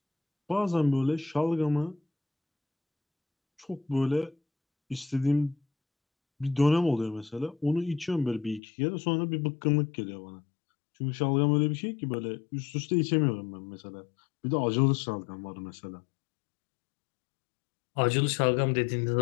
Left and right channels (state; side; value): drops out; right; at 8.6 s